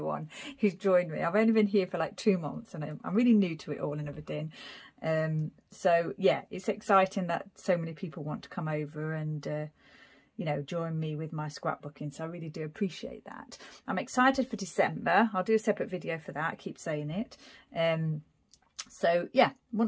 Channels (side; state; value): both; identical; correlation 1.00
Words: who's joined me. I've only been here for like 2 months, and I'm really new to it all and everything. So yeah, it's exciting that so many people want to come over and you know, join me with my scrapbooking. So I really do appreciate that. I'm excited for December. I'll do a separate video for that. I keep saying it. So yeah,